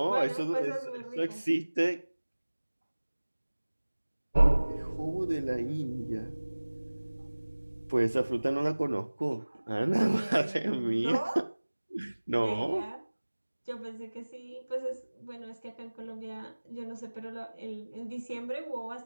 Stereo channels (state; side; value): inverted; both; correlation -1.00